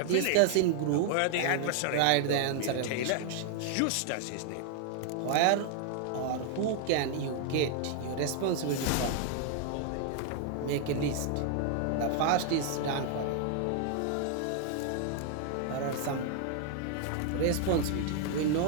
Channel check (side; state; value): both; different; correlation 0.00